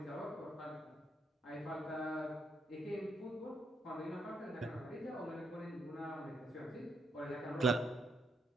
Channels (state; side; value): normal; both; correlation 0.77